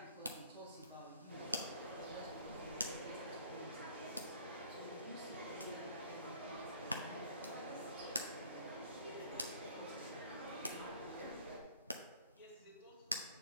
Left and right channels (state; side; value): inverted; both; correlation -0.53